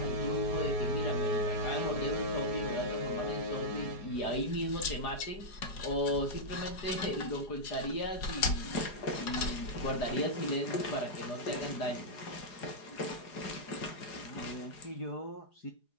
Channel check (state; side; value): late; right; 4.8 ms